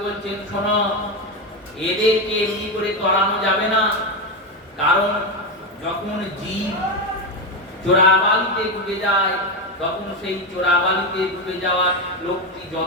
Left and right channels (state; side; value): normal; both; correlation 0.11